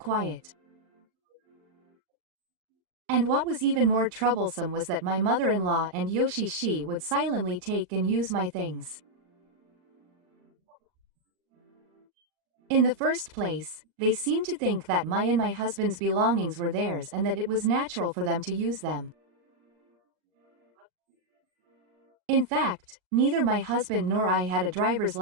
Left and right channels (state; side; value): late; left; 39 ms